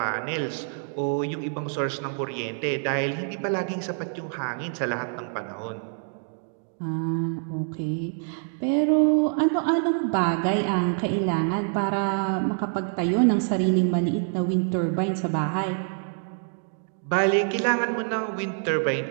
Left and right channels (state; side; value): silent; left; 60 dB below the other